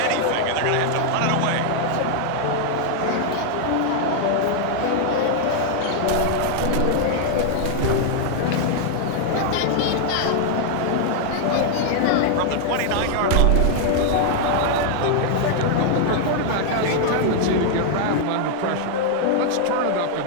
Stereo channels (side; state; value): both; different; correlation 0.00